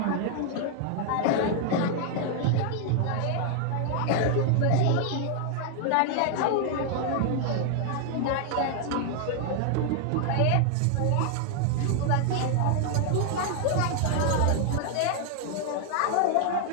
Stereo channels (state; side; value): different; both; correlation 0.00